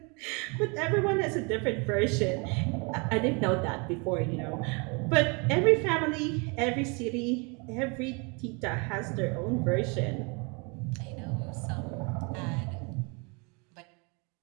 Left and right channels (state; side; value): quieter; left; 31.8 dB